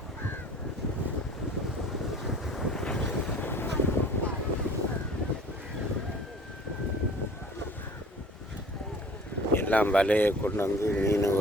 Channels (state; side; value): normal; both; correlation 0.48